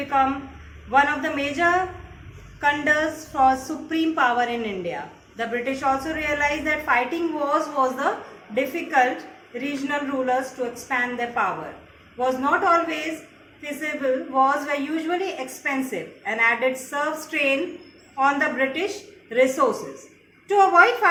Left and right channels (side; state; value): both; identical; correlation 1.00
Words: one of the major contenders for supreme power in India. The British also realized that fighting wars was the difficult regional rulers to expand their power. Was not always feasible, wars were usually expensive and added serve strain on the British resources. To avoid